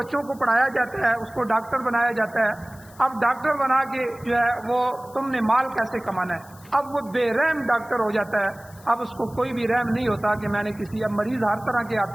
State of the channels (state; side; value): noise; left; hiss, 24 dB below the sound